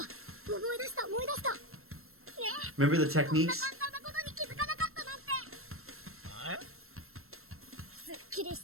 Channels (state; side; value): late; left; 0.62 ms